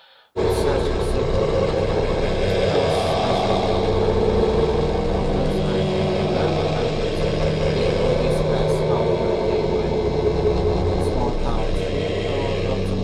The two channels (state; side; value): identical; both; correlation 1.00